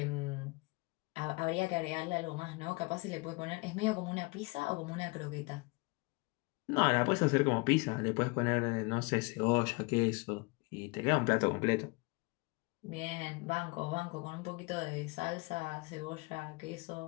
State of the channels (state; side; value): quieter; right; 27.3 dB